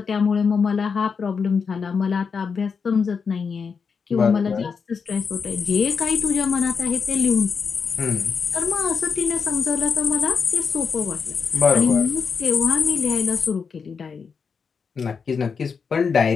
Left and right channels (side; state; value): right; quieter; 5.7 dB